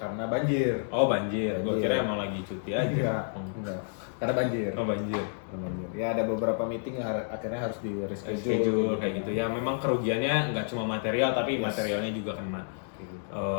banjir. Oh banjir, gue Banjir. kira emang lagi cuti aja. Iya, enggak. Karena banjir. Oh banjir. Karena banjir. Ya ada beberapa meeting yang akhirnya harus di Schedule kayak gitu ya. Memang kerugiannya nggak cuma material, tapi Yes. materialnya juga kena. Kayak gitu.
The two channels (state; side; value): silent; right; digital silence